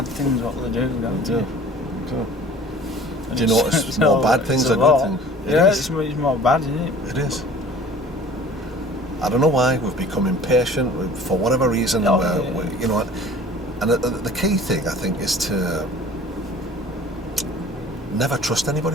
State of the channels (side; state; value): both; normal; correlation 0.46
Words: things what they do, don't you? Do you notice more bad things it's a or lot. good things? Yeah, it's more bad, isn't it? It is. I don't know why we've become impatient for whatever reason. You know, and the key thing I think is to never trust